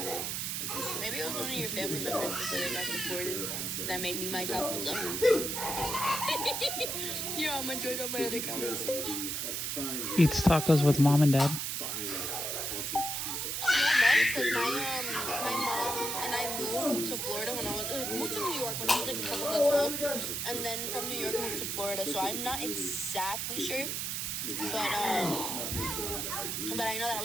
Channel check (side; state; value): right; noise; hiss, 2 dB below the sound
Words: Maybe it was one of your family members that said it got supported that made me my tacos up. Yeah, I'm enjoying all my other comments. Eats tacos with mom and dad. Because my mom and I moved to Florida when I was moved to New York when I was like a couple months old, and then from New York moved to Florida. So I'm not exactly sure, but I know that I